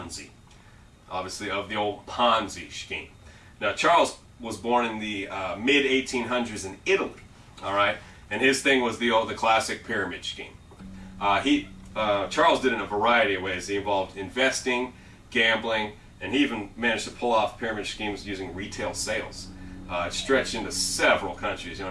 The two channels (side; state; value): both; identical; correlation 1.00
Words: obviously of the old Ponzi scheme. Now, Charles was born in the mid-1800s in Italy, all right? And his thing was the classic pyramid scheme. Charles did it in a variety of ways. He involved investing, gambling, and he even managed to pull off pyramid schemes using retail sales. It stretched into several countries,